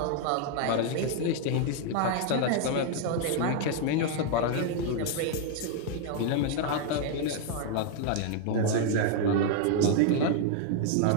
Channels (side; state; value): both; different; correlation 0.00